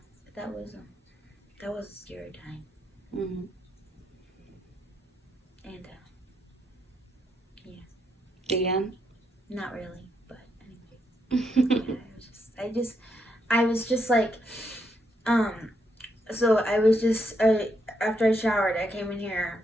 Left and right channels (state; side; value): normal; both; correlation 0.78